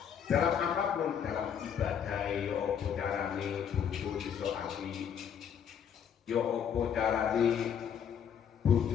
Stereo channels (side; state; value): right; quieter; 8.1 dB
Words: Dalam apapun, dalam ibadah ya apa carane bojo iso apik. Ya apa carane